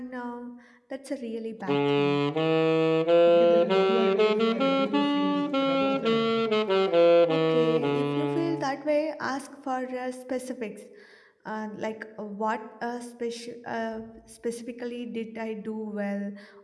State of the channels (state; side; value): identical; both; correlation 1.00